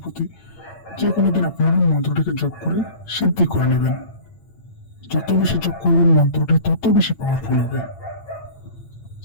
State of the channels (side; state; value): right; late; 8.8 ms